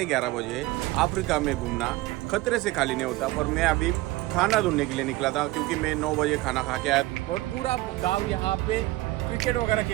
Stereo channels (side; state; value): left; quieter; 19.1 dB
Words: बजे। अफ्रीका में घूमना खतरे से खाली नहीं होता, पर मैं अभी खाना ढूंढने के लिए निकला था क्योंकि मैं 9 बजे खाना खा के आया। और पूरा गाँव यहाँ पे क्रिकेट वगैरह